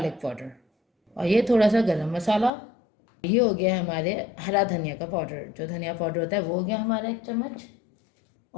पाउडर और ये थोड़ा सा गरम मसाला। ये हो गया हमारे हरा धनिया का पाउडर, जो धनिया पाउडर होता है वो हो गया हमारा 1 चम्मच।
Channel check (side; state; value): right; drops out; at 2.5 s